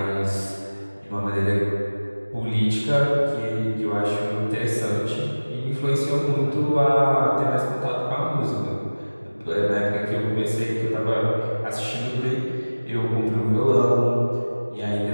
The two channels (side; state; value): both; inverted; correlation -1.00